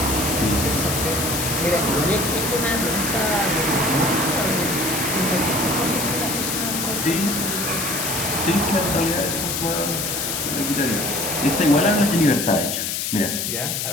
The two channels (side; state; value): left; noise; hiss, 1 dB below the sound